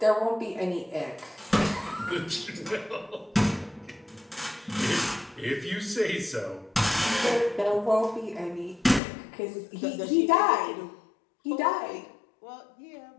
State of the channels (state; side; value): drops out; right; at 9.0 s